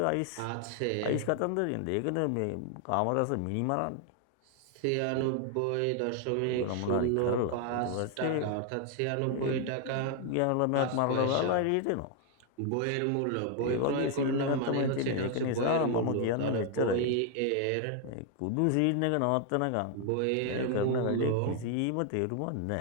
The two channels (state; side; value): different; both; correlation 0.00